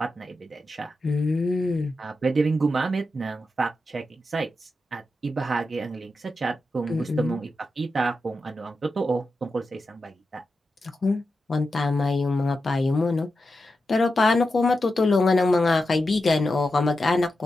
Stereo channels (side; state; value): both; normal; correlation 0.89